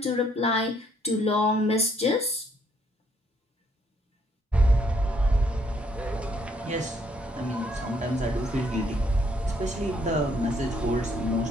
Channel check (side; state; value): both; normal; correlation 0.69